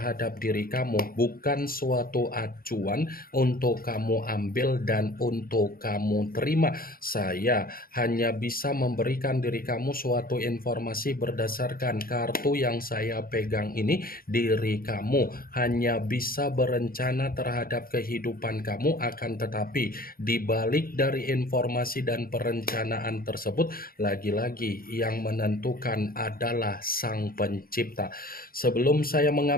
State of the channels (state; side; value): late; right; 0.42 ms